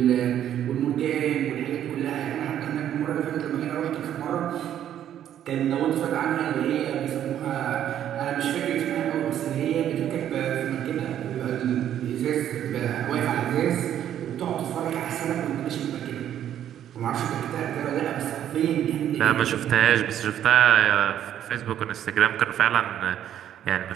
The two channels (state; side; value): quieter; left; 10.6 dB